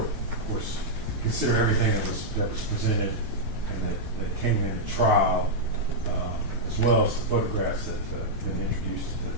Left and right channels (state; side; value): normal; both; correlation -0.06